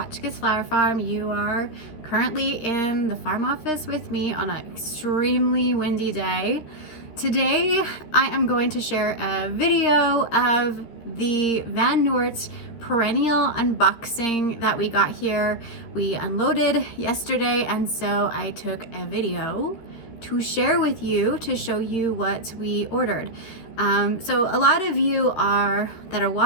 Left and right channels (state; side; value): late; right; 13 ms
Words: Flower Farm. You are currently in the farm office with me on an extremely windy day. Today, I am going to share a video of the Van Noort perennial unboxing that we got here. We unloaded yesterday, and so I took a video to share with you to show you what we ordered. So a lot of you that are